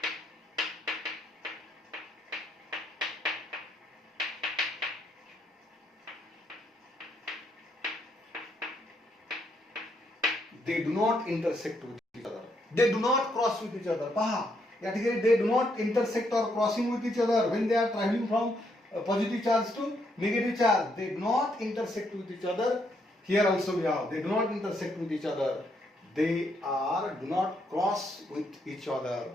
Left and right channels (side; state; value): both; normal; correlation 0.75